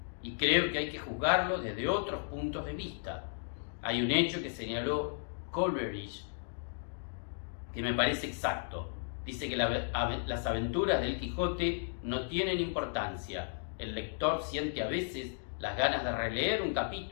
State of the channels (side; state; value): right; silent; digital silence